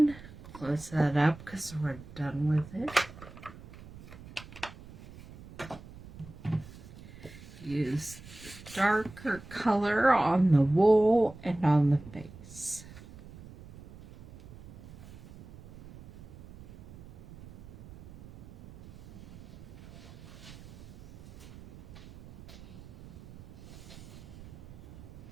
close that up because we're done with it. Use the darker color on the wool and on the face.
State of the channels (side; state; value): right; noise; rumble, 17 dB below the sound